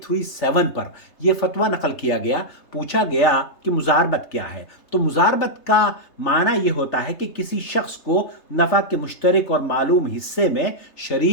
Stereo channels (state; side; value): late; right; 3.3 ms